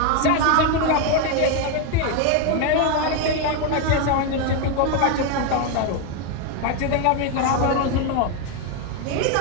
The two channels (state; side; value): different; both; correlation 0.01